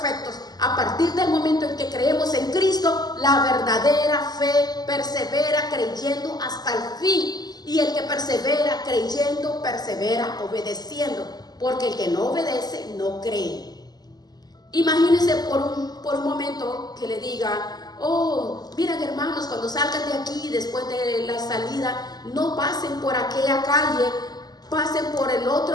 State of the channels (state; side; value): late; right; 0.20 ms